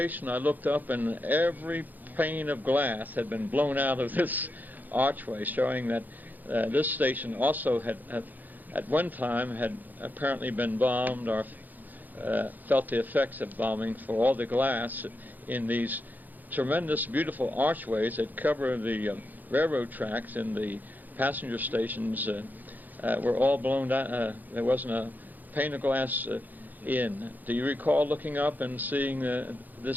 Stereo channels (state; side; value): late; left; 0.084 ms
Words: I looked up, and every pane of glass had been blown out of this archway, showing that this station also had at one time had apparently been bombed or felt the effects of bombing, for all the glass in these tremendous, beautiful archways that cover the railroad tracks and the passenger stations were all blown out. There wasn't a pane of glass in. Do you recall looking up and seeing